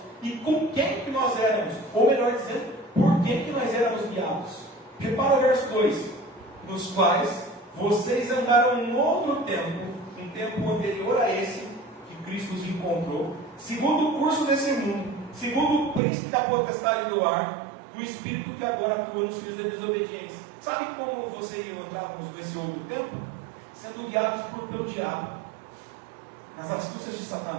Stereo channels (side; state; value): left; drops out; at 16.0 s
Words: e com quem que nós éramos, ou melhor dizendo, por quem que nós éramos guiados. Repara o verso 2, nos quais vocês andaram em outro tempo, um tempo anterior a esse, que Cristo os encontrou, segundo o curso desse mundo, segundo o príncipe da potestade do ar, o espírito que agora atua nos filhos da desobediência. Sabe como você e eu entrávamos nesse outro tempo? Sendo guiados pelo diabo, nas astúcias de